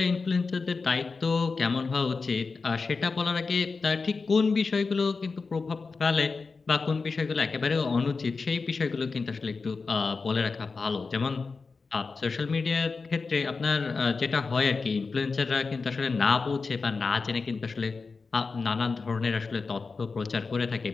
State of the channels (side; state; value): right; quieter; 4.4 dB